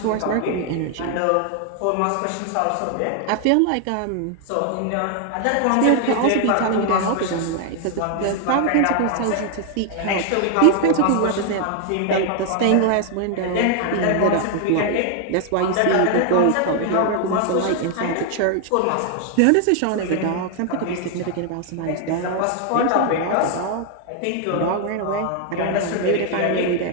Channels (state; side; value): different; both; correlation 0.00